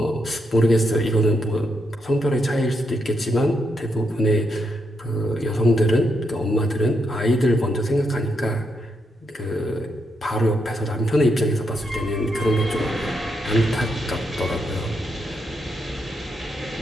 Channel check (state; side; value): normal; both; correlation 0.80